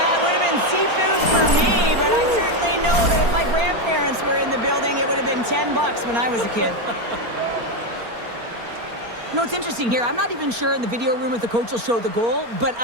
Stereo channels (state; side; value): late; left; 4.3 ms